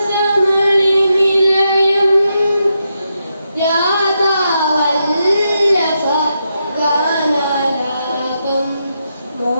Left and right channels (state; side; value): inverted; both; correlation -0.84